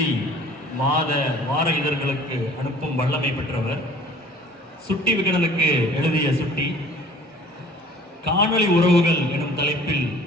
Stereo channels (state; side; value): normal; both; correlation 0.50